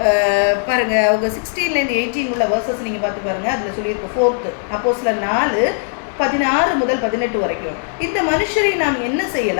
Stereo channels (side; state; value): right; silent; 57 dB below the other